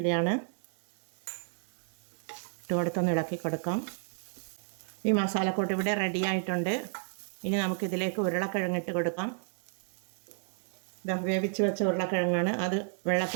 ഇട്ട് കൊടുത്തൊന്ന് ഇളക്കി കൊടുക്കാം. ഈ മസാലക്കൂട്ട് ഇവിടെ റെഡി ആയിട്ടുണ്ട്. ഇനി നമുക്കിതിലേക്ക് ഉരുളക്കിഴങ്ങ് ഇട്ട് കൊടുക്കാം. വേവിച്ച് വെച്ച ഉരുളക്കിഴങ്ങാണ്, അത്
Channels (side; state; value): left; silent; 57 dB below the other